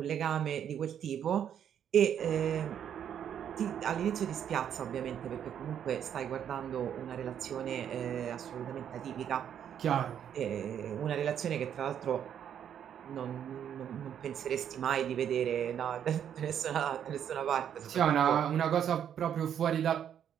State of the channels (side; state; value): left; quieter; 9.1 dB